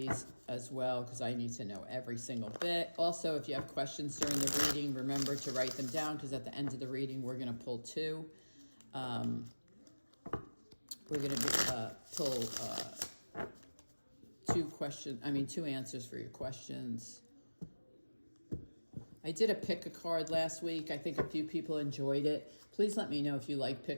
as well because I need to know every single bit. Also, if you have questions during the reading, remember to write them down because at the end of the reading, we're going to pull two. We're going to pull two answers for your questions. I did a pick a card last week. I think a few people enjoyed it. Please let me know if you like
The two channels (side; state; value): both; inverted; correlation -1.00